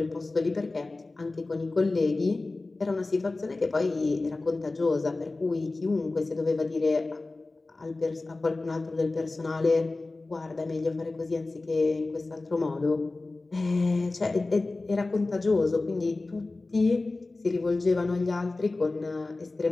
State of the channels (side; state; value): right; quieter; 3.3 dB